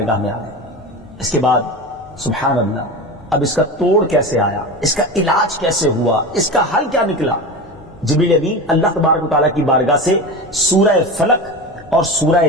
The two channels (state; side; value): normal; both; correlation 0.26